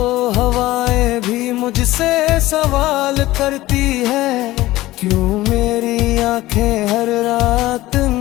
हवाएं भी मुझसे सवाल करती है, क्यों मेरी आंखें हर रात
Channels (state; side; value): quieter; right; 17.2 dB